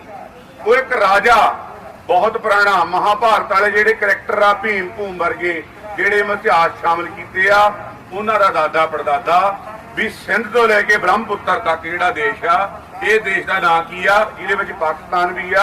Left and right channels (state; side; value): identical; both; correlation 1.00